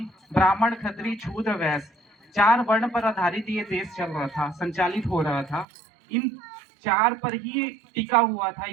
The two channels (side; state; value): left; drops out; at 5.7 s